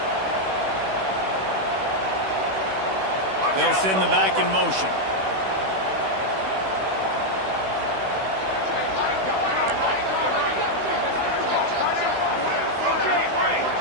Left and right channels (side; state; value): left; late; 16 ms